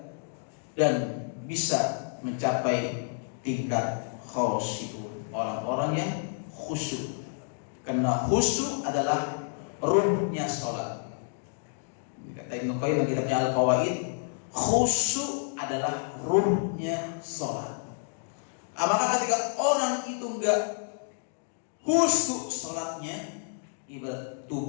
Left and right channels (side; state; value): right; silent; digital silence